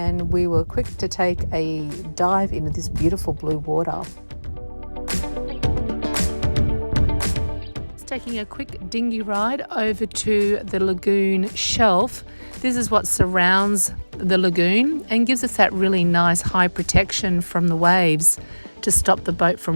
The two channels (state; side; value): inverted; both; correlation -1.00